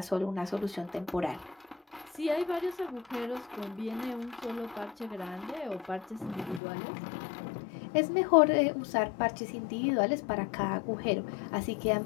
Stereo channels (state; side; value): drops out; right; at 6.6 s